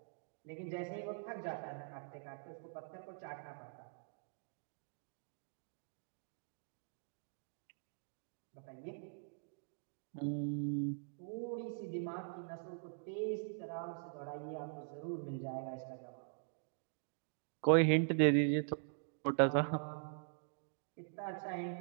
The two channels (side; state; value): left; silent; digital silence